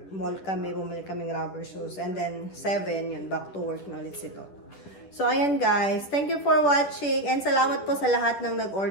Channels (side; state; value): right; late; 10 ms